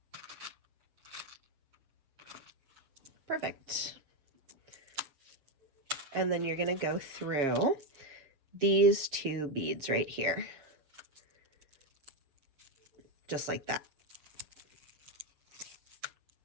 Perfect. And then you're going to go through these 2 beads right here. Just like that.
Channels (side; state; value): left; late; 7.3 ms